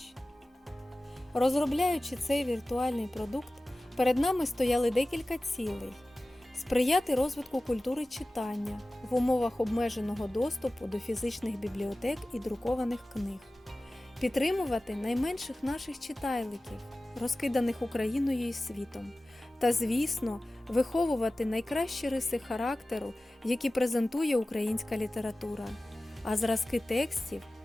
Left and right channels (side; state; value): both; normal; correlation 0.96